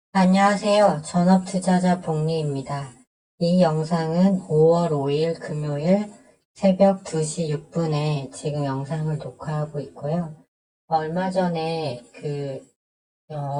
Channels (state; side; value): identical; both; correlation 1.00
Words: 안녕하세요. 전업투자자 복리입니다. 이 영상은 5월 5일 금요일 새벽 2시 6분에 지금 영상을 녹화하고 있고요. 얼마 전에